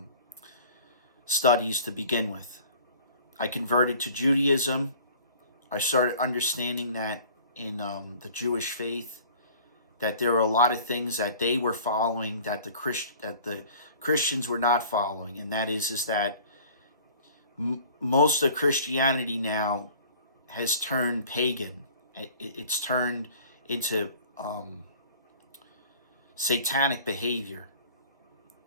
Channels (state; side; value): inverted; both; correlation -0.48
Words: studies to begin with. I converted to Judaism. I started understanding that in the Jewish faith, that there were a lot of things that they were following that the Christians were not following, and that is that most of Christianity now has turned pagan. It's turned into satanic behavior.